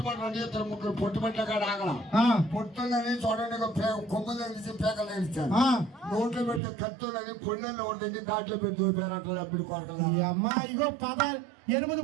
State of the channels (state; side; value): drops out; left; at 6.6 s